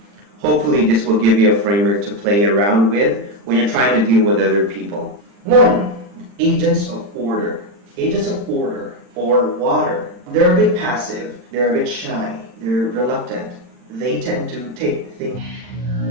Hopefully, this will give you a framework to play around with when you're trying to deal with other people. 1, agents of order. Agents of order, or water. They're a bit passive, they're a bit shy, they're reluctant. They tend to take things.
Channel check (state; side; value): late; left; 40 ms